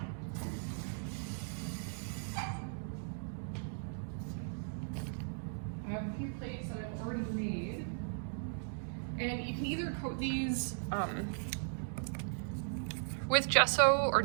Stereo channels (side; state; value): left; silent; digital silence